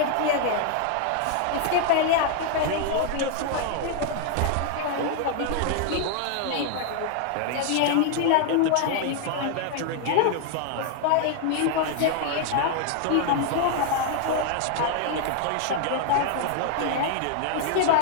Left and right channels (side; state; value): both; different; correlation 0.00